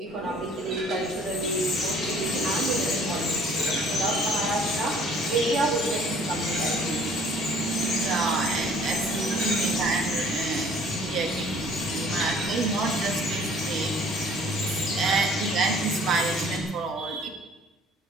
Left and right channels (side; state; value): both; normal; correlation 0.55